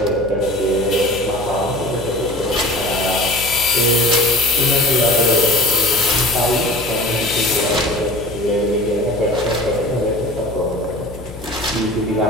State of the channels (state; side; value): noise; left; hum, 15 dB below the sound